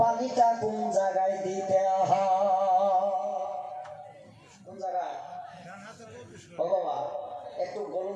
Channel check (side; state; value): both; identical; correlation 1.00